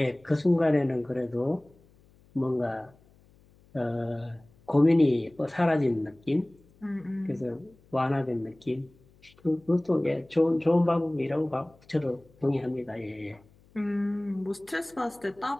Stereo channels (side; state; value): left; noise; hum, 29 dB below the sound